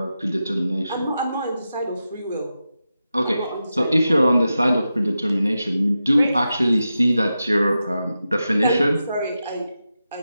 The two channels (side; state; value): both; inverted; correlation -0.90